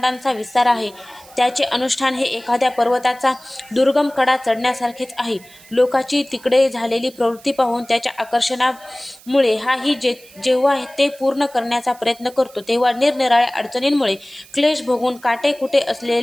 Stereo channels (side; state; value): right; noise; hiss, 24 dB below the sound